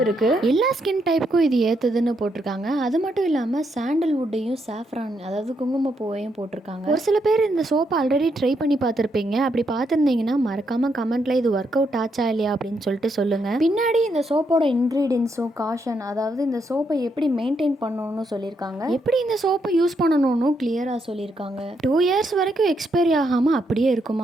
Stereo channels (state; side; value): normal; both; correlation 0.78